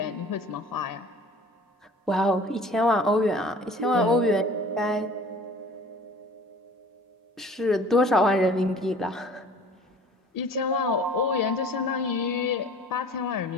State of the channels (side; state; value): both; normal; correlation 0.46